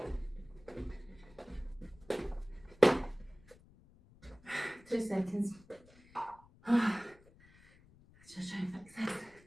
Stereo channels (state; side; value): noise; left; rumble, 25 dB below the sound